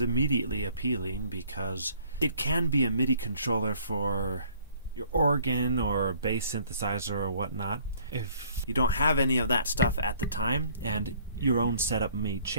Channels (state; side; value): inverted; both; correlation -0.58